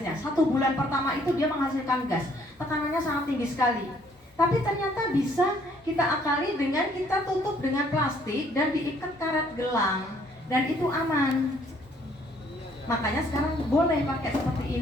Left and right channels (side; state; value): both; normal; correlation 0.64